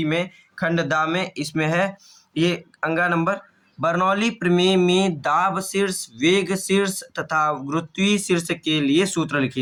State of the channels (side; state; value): both; identical; correlation 1.00